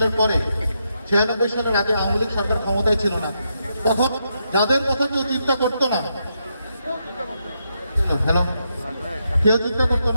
পরে 96 সালের আগে আওয়ামী লীগ সরকার ক্ষমতায় ছিল না, তখন যাদের কথা কেউ চিন্তা করতো না, কেউ চিন্তা করতো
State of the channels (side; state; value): both; inverted; correlation -0.82